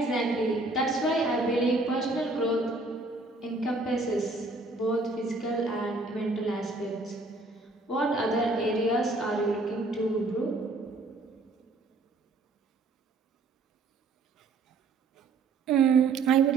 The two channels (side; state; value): left; quieter; 3.4 dB